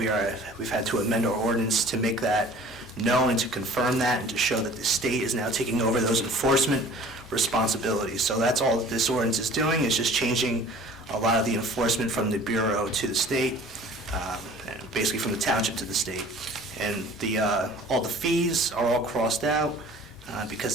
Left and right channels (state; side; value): normal; both; correlation 0.48